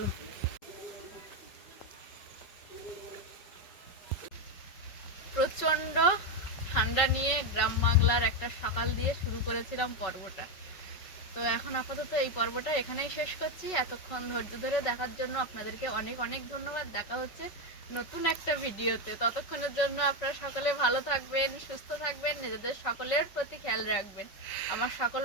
প্রচণ্ড ঠান্ডা নিয়ে গ্রাম বাংলার একটা সকাল দিয়ে শুরু করেছিলাম পর্বটা। তো এখন আপাতত এই পর্বটা এখানেই শেষ করছি। এতক্ষণ ধৈর্য ধরে দেখার জন্য আপনাদেরকে অনেক অনেক ধন্যবাদ। দেখা হচ্ছে নতুন একটা ভিডিওতে। ততক্ষণের জন্য আপনারা সকলে ভালো থাকবেন, সুস্থ থাকবেন, নিজেদের সকলের প্রতি খেয়াল রাখবেন। আমার সকল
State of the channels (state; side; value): late; right; 5.4 ms